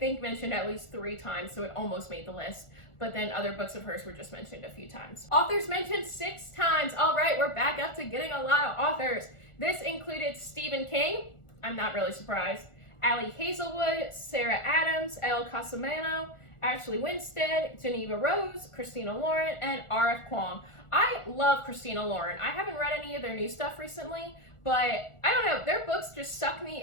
mentioned at least 3 times, so it almost made the list. But then other books of hers were just mentioned a few times. Authors mentioned 6 times. All right, we're back up to getting a lot of authors. This included Stephen King. I'm not really surprised. Ali Hazelwood, Sarah Adams, Elle Casamano, Ashley Winstead, Geneva Rose, Christina Lauren, and R.F. Kuang. I love Christina Lauren. I haven't read any of their new stuff recently, but I don't know, their books just suck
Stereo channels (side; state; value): right; late; 1.4 ms